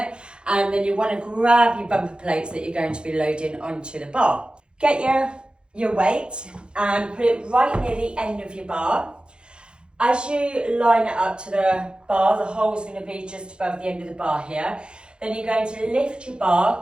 and then you want to grab your bumper plates that you're going to be loading onto the bar. Get your weight and put it right near the end of your bar. As you line it up to the bar, the hole's going to be just above the end of the bar here. Then you're going to lift your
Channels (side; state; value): left; late; 0.052 ms